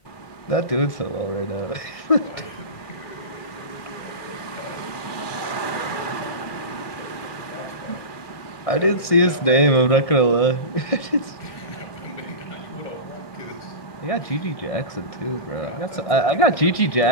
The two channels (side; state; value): right; late; 1.6 ms